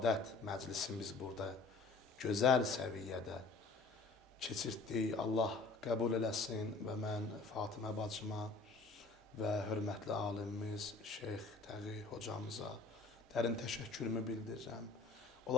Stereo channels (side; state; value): right; quieter; 3.9 dB